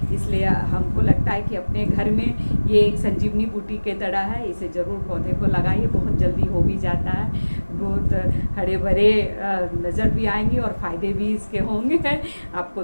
इसलिए हमको लगता है कि अपने घर में ये एक संजीवनी बूटी के तरह है, इसे ज़रूर पौधे को लगाइए, बहुत जल्दी हो भी जाता है। बहुत हरे भरे नज़र भी आएंगे और फ़ायदे भी इसके होंगे। आपको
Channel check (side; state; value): both; inverted; correlation -1.00